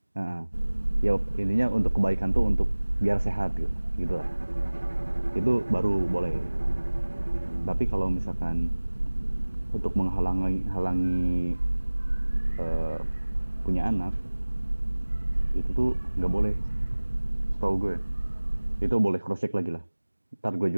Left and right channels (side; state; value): both; inverted; correlation -1.00